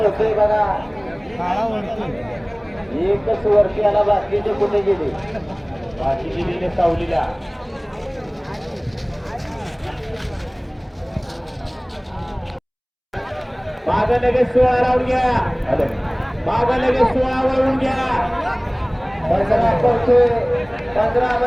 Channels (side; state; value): both; identical; correlation 1.00